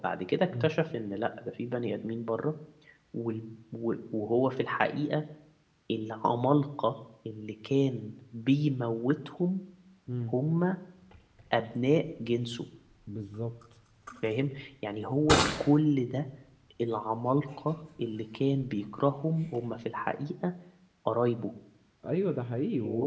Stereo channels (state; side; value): identical; both; correlation 1.00